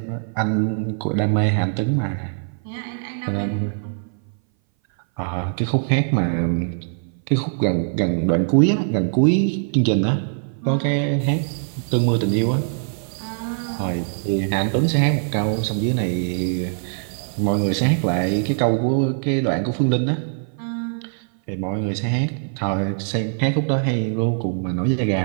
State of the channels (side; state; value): left; silent; 59 dB below the other